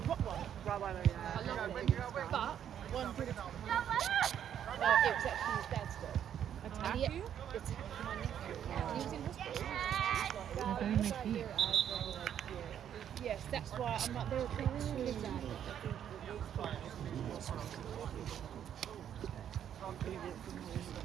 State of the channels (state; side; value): quieter; left; 9.6 dB